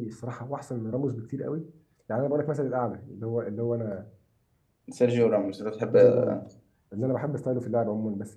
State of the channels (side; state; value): both; identical; correlation 1.00